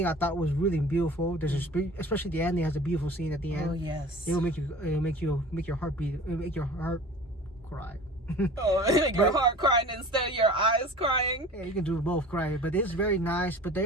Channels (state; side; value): normal; both; correlation 0.41